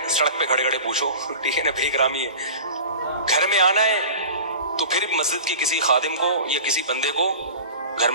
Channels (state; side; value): inverted; both; correlation -0.36